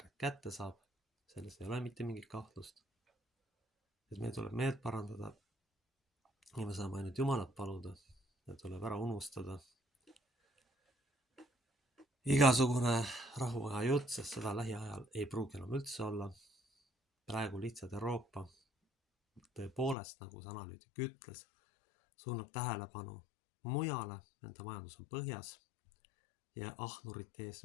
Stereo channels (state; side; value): drops out; right; at 20.0 s